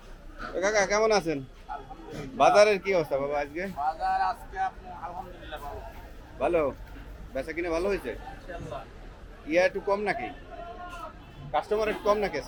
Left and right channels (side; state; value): both; identical; correlation 1.00